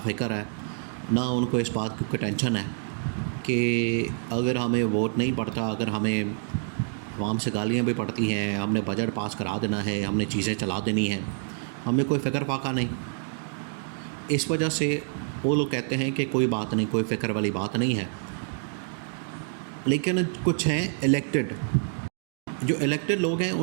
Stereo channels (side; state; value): left; silent; 60 dB below the other